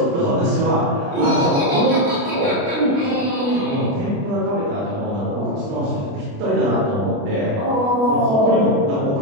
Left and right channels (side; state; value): left; late; 29 ms